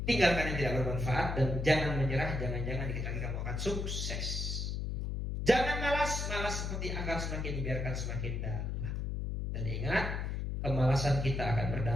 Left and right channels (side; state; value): left; noise; hum, 2 dB below the sound